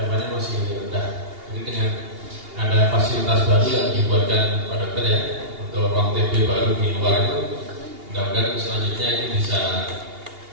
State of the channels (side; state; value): left; late; 2.8 ms